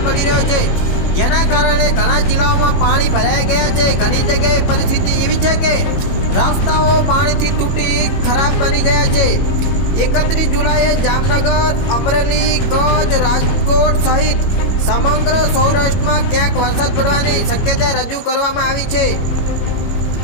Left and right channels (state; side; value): late; right; 22 ms